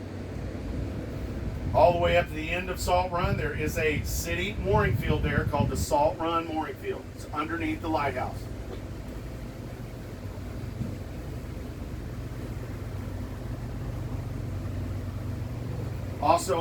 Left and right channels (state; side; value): identical; both; correlation 1.00